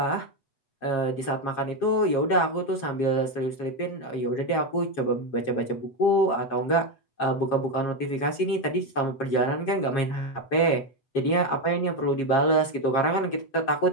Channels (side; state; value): right; late; 7.4 ms